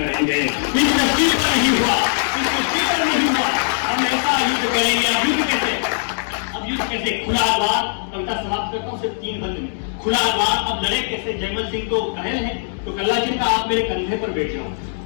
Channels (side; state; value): right; silent; digital silence